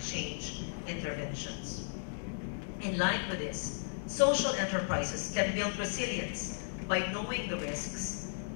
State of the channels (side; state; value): right; silent; digital silence